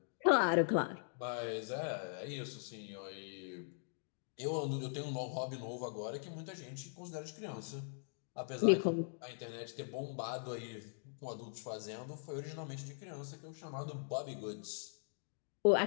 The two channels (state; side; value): silent; right; digital silence